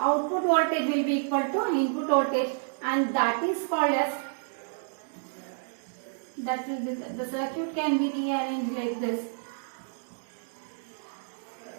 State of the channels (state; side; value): silent; left; digital silence